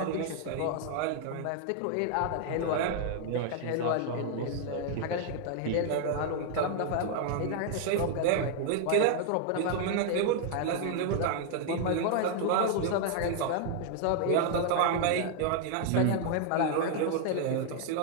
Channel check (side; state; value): both; different; correlation 0.00